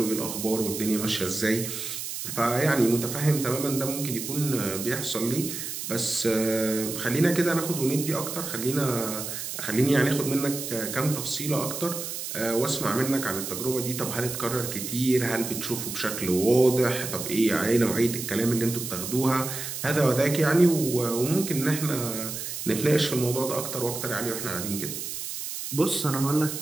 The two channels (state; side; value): noise; right; hiss, 6 dB below the sound